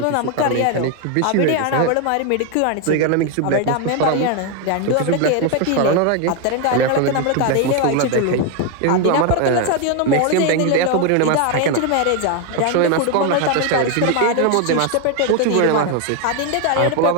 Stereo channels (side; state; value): both; different; correlation 0.01